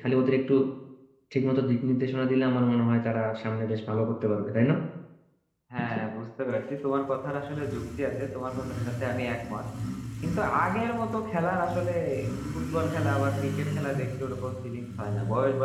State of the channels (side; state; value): both; identical; correlation 1.00